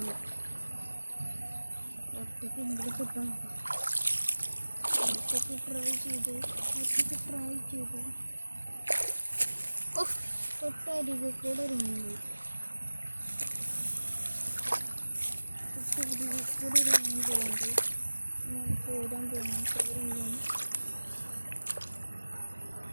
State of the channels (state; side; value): inverted; both; correlation -1.00